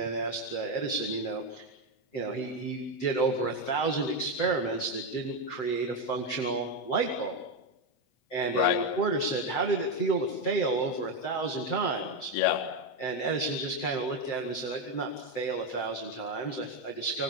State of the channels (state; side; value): late; right; 7.8 ms